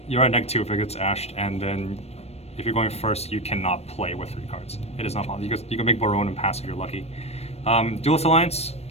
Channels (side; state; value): right; late; 0.31 ms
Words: you're at -2 if it gets ashed, and then if you're going first, you cannot play with 3 cards. It is not possible. You can make Barone and pass if you're lucky. Duelist Alliance.